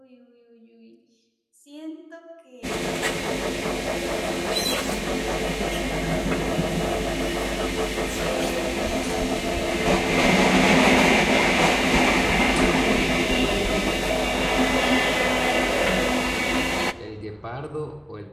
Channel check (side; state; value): both; identical; correlation 1.00